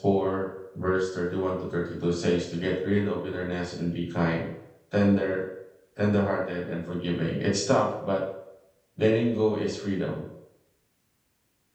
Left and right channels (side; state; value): both; identical; correlation 1.00